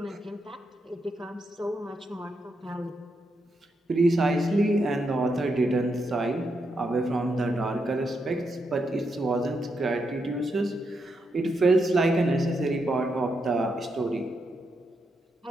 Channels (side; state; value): both; normal; correlation 0.82